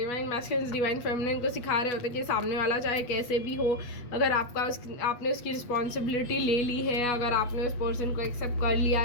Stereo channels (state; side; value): late; right; 8.3 ms